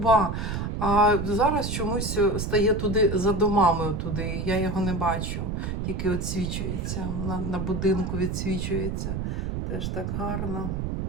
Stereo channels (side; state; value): right; noise; rumble, 3 dB below the sound